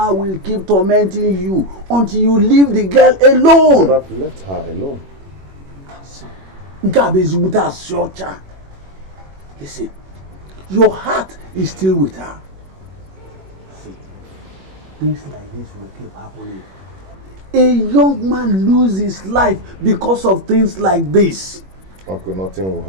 will keep tormenting you until you leave the girl alone. But I've left her alone. Listen, your heart is still with her. See, things like this will keep happening. A young man loses his life because of things like this. Uncle, nothing will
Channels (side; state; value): left; late; 21 ms